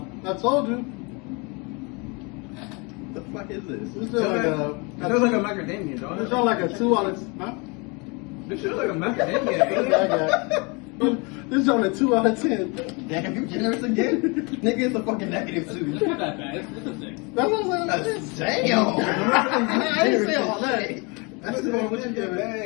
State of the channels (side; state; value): right; quieter; 29.8 dB